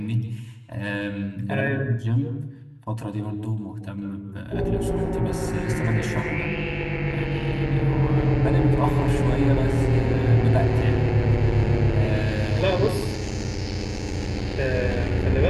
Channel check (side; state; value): both; identical; correlation 1.00